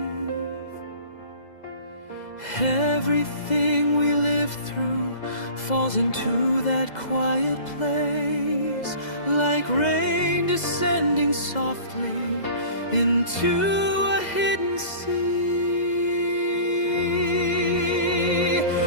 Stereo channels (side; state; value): right; late; 2.0 ms